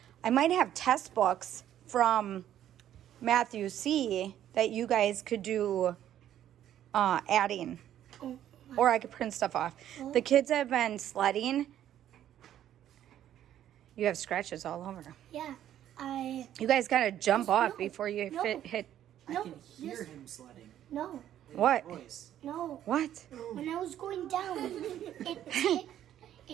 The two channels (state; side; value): quieter; left; 11.3 dB